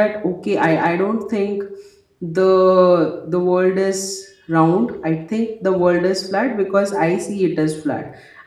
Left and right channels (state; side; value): identical; both; correlation 1.00